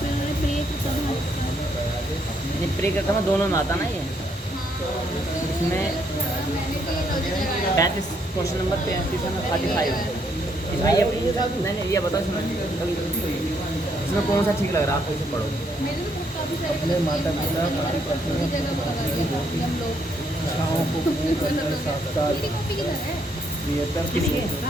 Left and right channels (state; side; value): normal; both; correlation 0.72